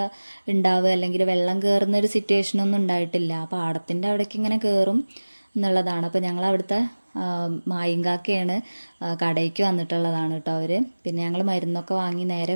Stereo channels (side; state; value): both; inverted; correlation -1.00